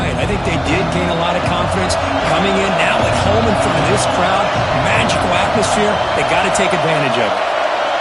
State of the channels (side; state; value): both; identical; correlation 1.00